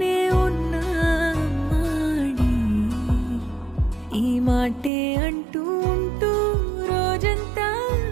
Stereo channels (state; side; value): drops out; left; at 4.9 s